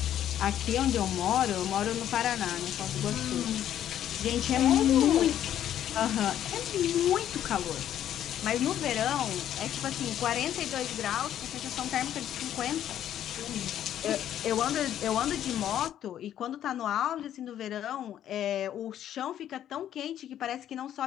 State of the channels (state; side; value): quieter; right; 11.0 dB